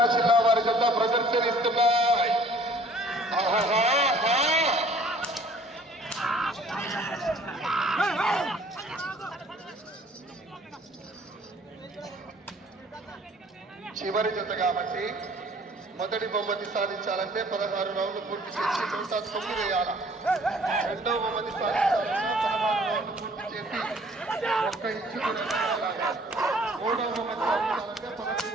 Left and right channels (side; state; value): both; normal; correlation 0.55